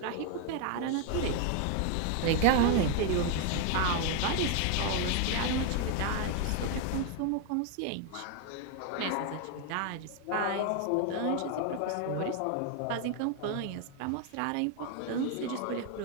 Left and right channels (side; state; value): both; different; correlation 0.01